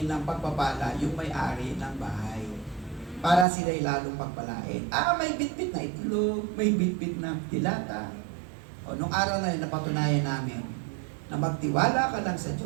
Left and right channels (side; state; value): left; drops out; at 3.5 s